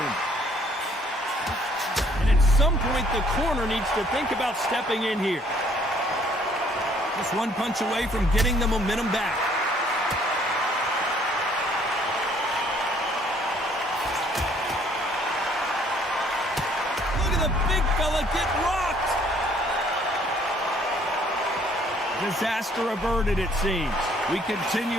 And at some point, the corner needs to think about stepping in here. Just one punch away from getting the momentum back. Look at the big fella get rocked. Disaster averted, it seems. We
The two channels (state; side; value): normal; both; correlation 0.61